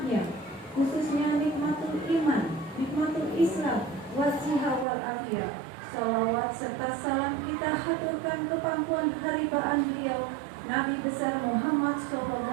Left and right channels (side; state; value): left; drops out; at 4.9 s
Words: khususnya nikmatul iman, nikmatul Islam, wasiha wal afiyah. Salawat serta salam kita haturkan ke pangkuan haribaan beliau Nabi besar Muhammad